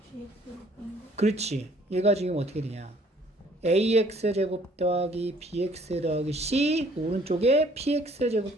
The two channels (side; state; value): both; normal; correlation 0.59